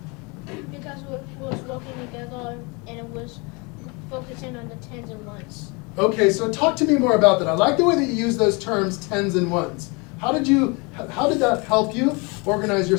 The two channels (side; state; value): right; quieter; 29.5 dB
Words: Because we was working together and it was focusing on the tens and ones. Okay, so talk to me more about that. I like the way that you use those terms, tens and ones. How did that help you organize